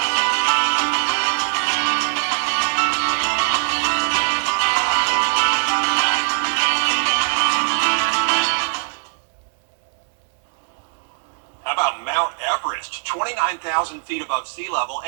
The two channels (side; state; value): left; silent; digital silence